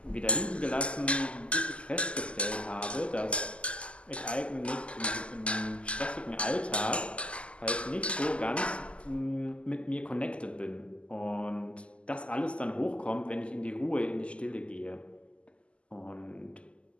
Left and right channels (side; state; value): right; late; 0.055 ms